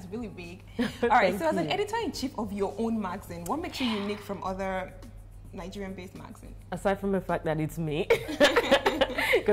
big. All right. So, as an editor-in-chief of your own magazine, what makes you unique from other Nigerian-based magazines? Aside from the fact that it's me,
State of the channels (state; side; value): identical; both; correlation 1.00